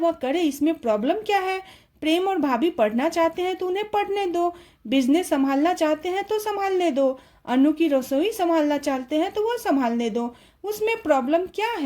करे, इसमें प्रॉब्लम क्या है? प्रेम और भाभी पढ़ना चाहते हैं तो उन्हें पढ़ने दो, बिजनेस संभालना चाहते हैं तो संभालने दो, अनु की रसोई संभालना चाहते हैं तो वह संभालने दो, उसमें प्रॉब्लम क्या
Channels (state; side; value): identical; both; correlation 1.00